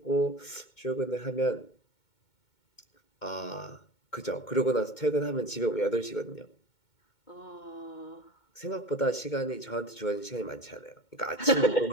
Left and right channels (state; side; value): late; right; 2.2 ms